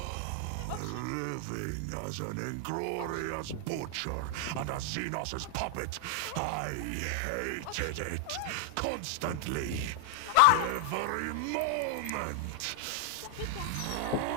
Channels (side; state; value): both; different; correlation 0.00